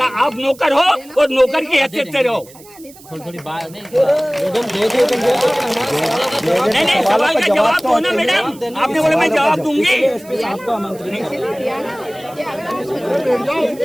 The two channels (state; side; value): noise; right; hiss, 22 dB below the sound